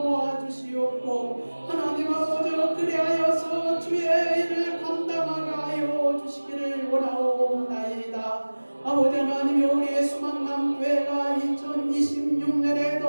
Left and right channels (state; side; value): inverted; both; correlation -1.00